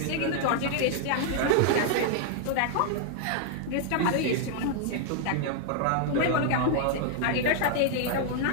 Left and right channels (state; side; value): different; both; correlation 0.00